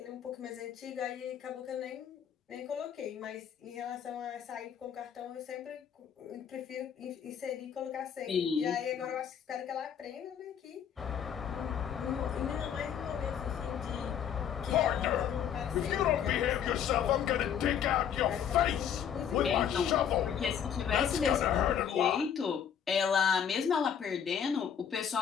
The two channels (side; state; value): right; quieter; 8.5 dB